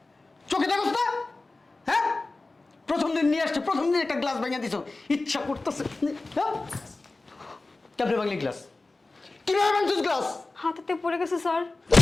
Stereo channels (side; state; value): right; quieter; 3.3 dB